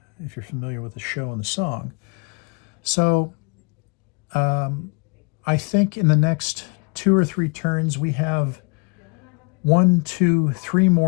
familiar with the show and the song. So I think in the next 2 or 3 turns, we have 1, 2, 3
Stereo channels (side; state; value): right; quieter; 33.4 dB